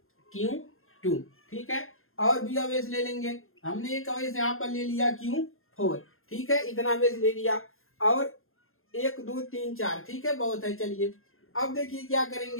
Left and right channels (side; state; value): right; late; 0.61 ms